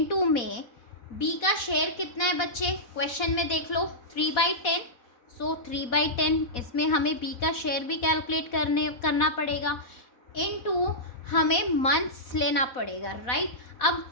में बी का शेयर कितना है बच्चे? क्वेश्चन में देख लो 3/10. सो 3/10 इसमें हमें बी का शेयर भी कैलकुलेट करना पड़ेगा. इनटू हमें मंथ्स लेना पड़ेगा, राइट. अब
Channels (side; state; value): right; late; 4.1 ms